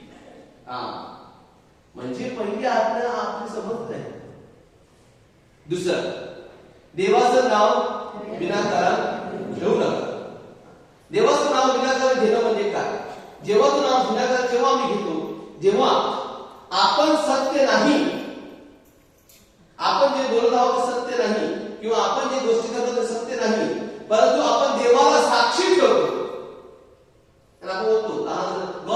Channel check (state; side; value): identical; both; correlation 1.00